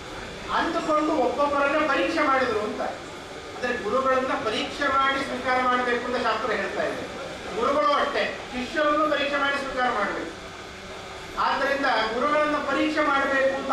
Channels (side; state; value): both; identical; correlation 1.00